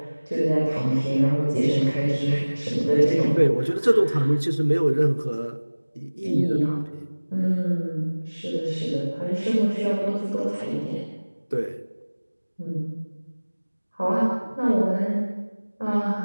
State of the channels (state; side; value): inverted; both; correlation -1.00